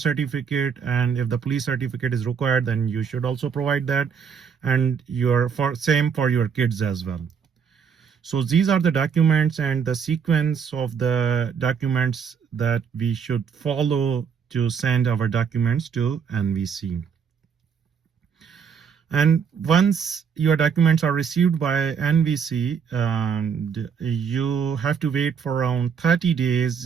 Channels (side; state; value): left; quieter; 6.8 dB